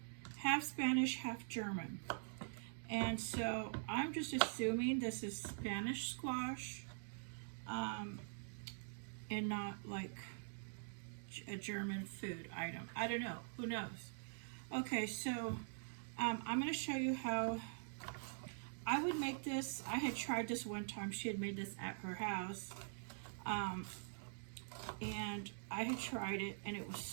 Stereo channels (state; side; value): silent; left; digital silence